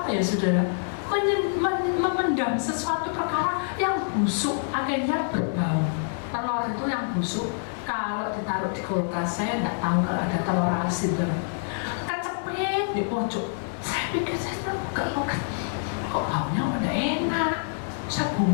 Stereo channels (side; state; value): right; silent; 56 dB below the other